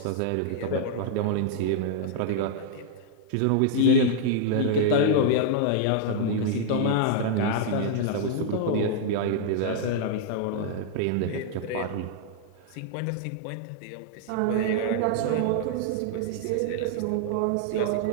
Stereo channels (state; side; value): different; both; correlation -0.01